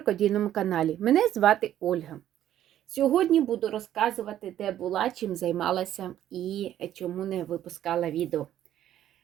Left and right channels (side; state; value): left; quieter; 11.7 dB